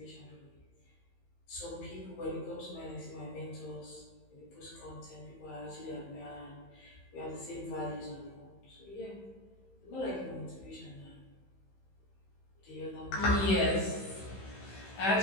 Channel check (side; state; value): right; late; 15 ms